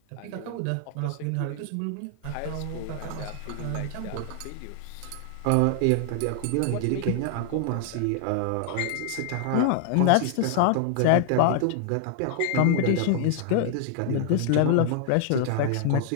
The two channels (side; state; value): both; different; correlation 0.00